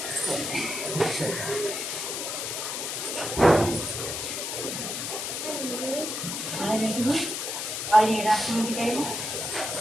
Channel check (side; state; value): left; noise; hiss, 3 dB below the sound